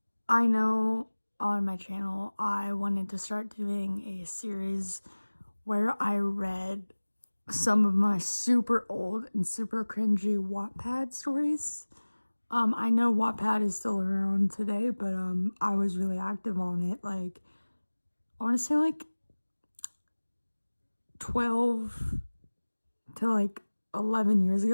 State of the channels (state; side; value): inverted; both; correlation -1.00